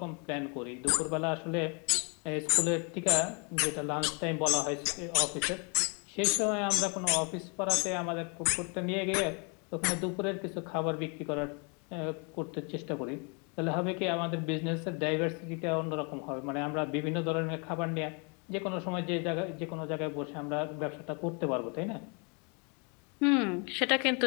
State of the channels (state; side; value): quieter; right; 34.7 dB